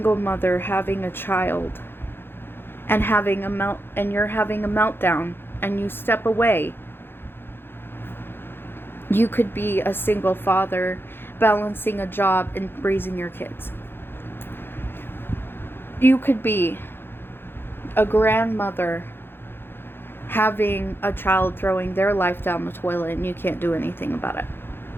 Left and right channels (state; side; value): late; right; 0.10 ms